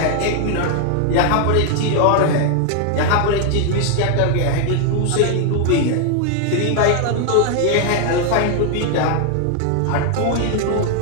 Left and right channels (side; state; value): both; different; correlation 0.00